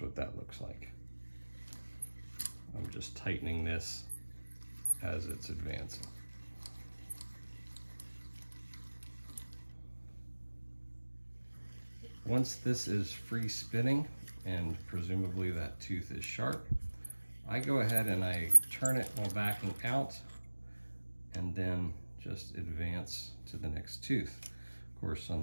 what that looks like. I'm just tightening this as it's advancing. Once this is free spinning, and presumably that tooth is sharp, I go ahead and I turn it while backing out, and then just advance to the next tooth. Of course, on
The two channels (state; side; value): inverted; both; correlation -1.00